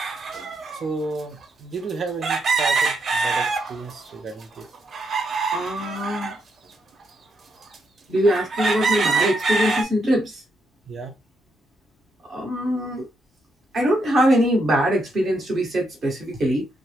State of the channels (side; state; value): both; normal; correlation 0.79